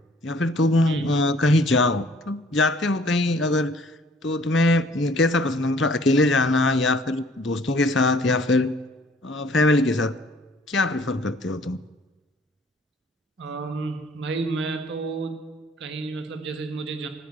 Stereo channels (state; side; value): normal; both; correlation 0.57